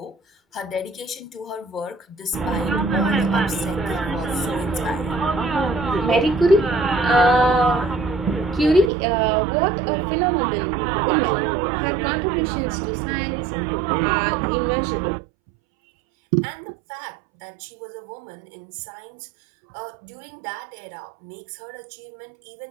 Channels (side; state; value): left; drops out; at 8.9 s